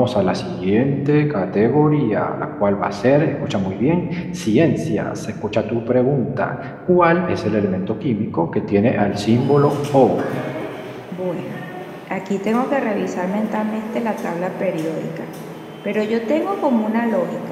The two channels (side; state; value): both; identical; correlation 1.00